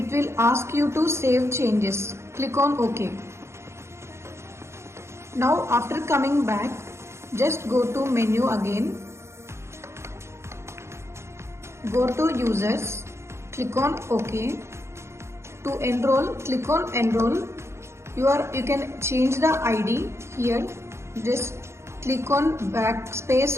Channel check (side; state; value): left; late; 0.13 ms